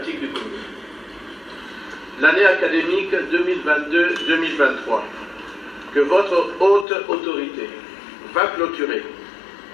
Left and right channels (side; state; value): right; drops out; at 6.9 s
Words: du Congo. L'année académique 2022-2023 que votre haute autorité va clôturer